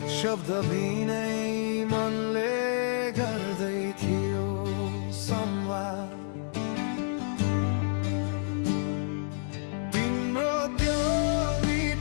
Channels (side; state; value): right; silent; 59 dB below the other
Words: शब्द बिनै मनले गर्दै थियो संवाद। तिम्रो त्यो